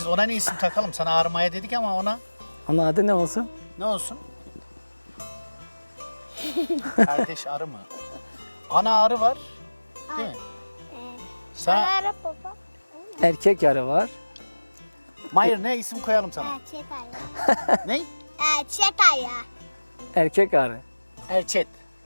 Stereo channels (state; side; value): inverted; both; correlation -1.00